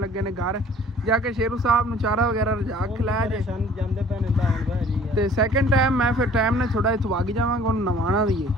ਲੱਗੇ ਨੇ ਘਰ ਜਾ ਕੇ ਸ਼ੇਰੂ ਸਾਹਿਬ ਨੂੰ ਚਾਰਾ ਵਗੈਰਾ ਰਜਾ ਖਿਲਾਇਆ ਜੇ ਜਾਂਦੇ ਪੈਣੇ ਤਾਂ ਜੀ। ਤੇ ਸੈਕਿੰਡ ਟਾਈਮ ਮੈਂ ਫਿਰ ਟਾਈਮ ਨਾਲ ਥੋੜਾ ਇੱਥੋਂ ਵਗ ਜਾਵਾਂਗਾ। ਉਹਨੂੰ ਨਵਾਉਣਾ ਵੀ ਹੈ।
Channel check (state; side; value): normal; both; correlation 0.52